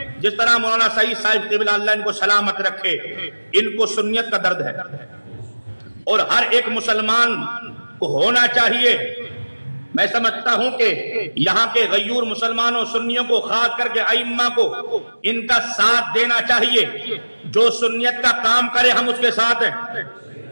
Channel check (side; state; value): both; inverted; correlation -1.00